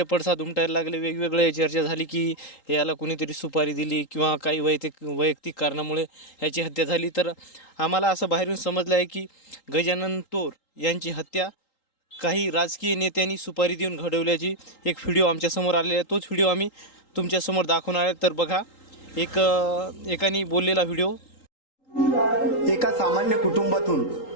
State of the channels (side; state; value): right; late; 3.8 ms